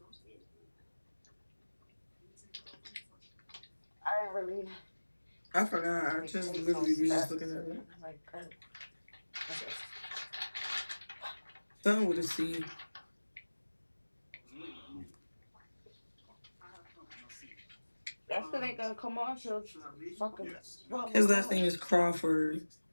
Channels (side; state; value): both; inverted; correlation -1.00